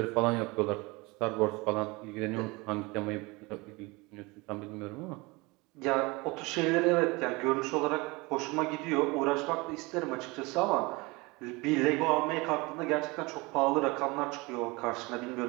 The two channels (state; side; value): quieter; left; 24.7 dB